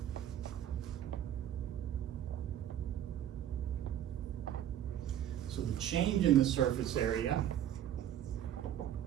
So the change in the surface area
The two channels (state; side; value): quieter; left; 11.0 dB